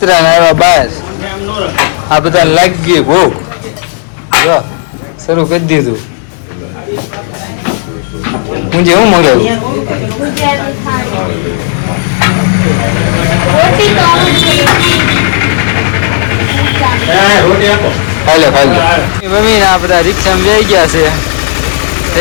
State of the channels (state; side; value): silent; right; digital silence